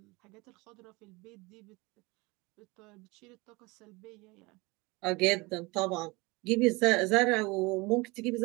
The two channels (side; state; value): left; quieter; 24.8 dB